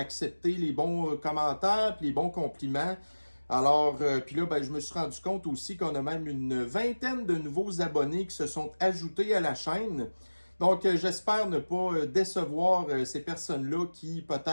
les bons commentaires, puis les bons compliments. Alors, puis là, je me suis rendu compte aussi qu'on a même une vingtaine de nouveaux abonnés qui se sont ajoutés à la chaîne. Donc, j'espère ne pas décevoir ces personnes-là qui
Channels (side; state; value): both; inverted; correlation -1.00